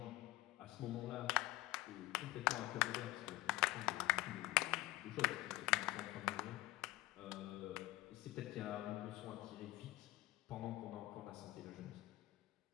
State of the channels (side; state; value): right; quieter; 18.4 dB